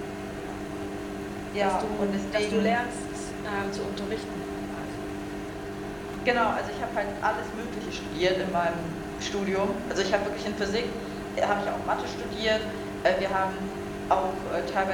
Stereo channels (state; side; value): identical; both; correlation 1.00